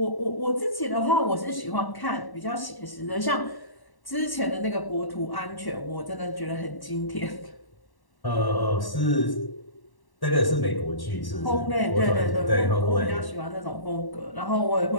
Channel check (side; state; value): right; late; 1.1 ms